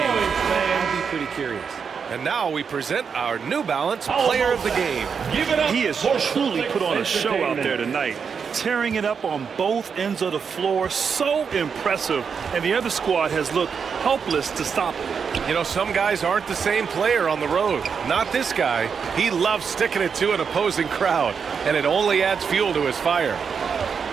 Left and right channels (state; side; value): quieter; left; 6.3 dB